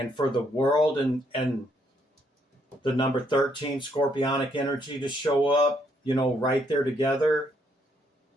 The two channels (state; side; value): normal; both; correlation 0.72